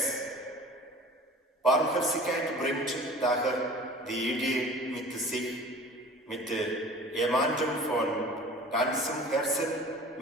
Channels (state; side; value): normal; both; correlation 0.42